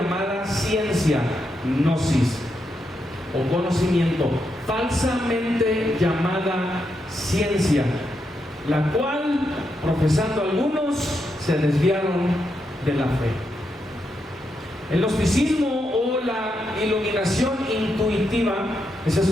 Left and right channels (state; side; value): normal; both; correlation 0.83